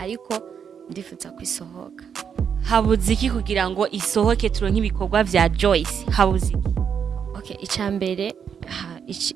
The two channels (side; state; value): left; quieter; 7.4 dB